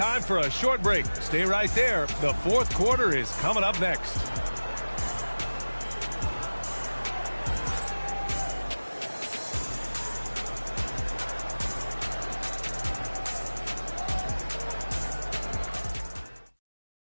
for a short break. Stay right there. The 4th quarter is coming up next.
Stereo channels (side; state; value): both; inverted; correlation -1.00